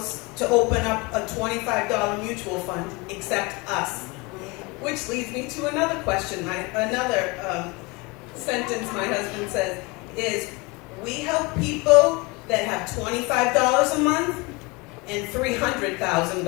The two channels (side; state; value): right; quieter; 25.5 dB